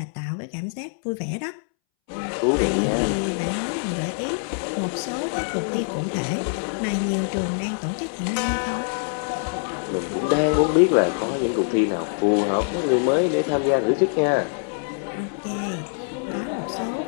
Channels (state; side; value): silent; right; 62 dB below the other